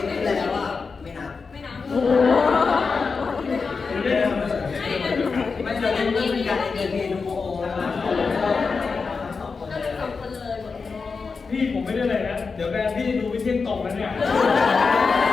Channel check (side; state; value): right; quieter; 4.8 dB